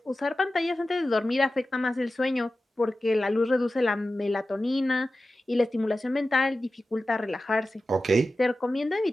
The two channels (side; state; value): both; normal; correlation 0.94